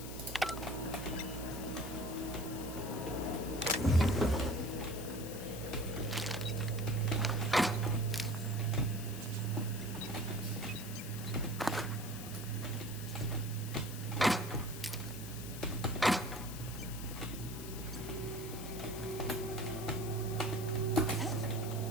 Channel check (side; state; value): left; noise; hiss, 11 dB below the sound